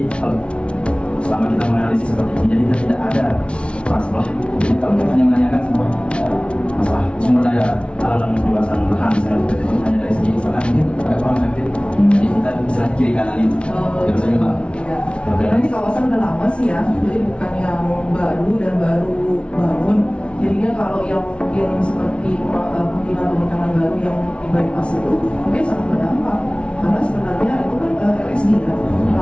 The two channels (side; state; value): right; late; 0.059 ms